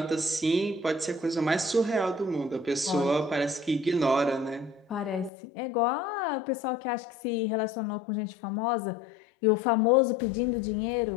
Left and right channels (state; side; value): drops out; right; at 5.3 s